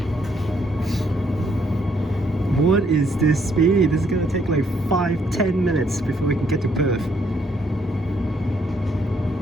What is this speed? This is going to take like 5-10 minutes before we can get to Perth.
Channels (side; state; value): both; normal; correlation 0.70